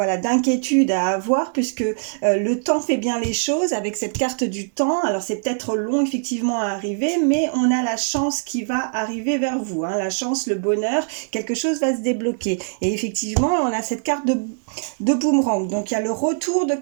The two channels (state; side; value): silent; left; 64 dB below the other